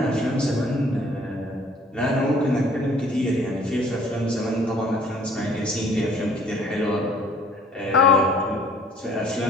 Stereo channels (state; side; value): normal; both; correlation 0.57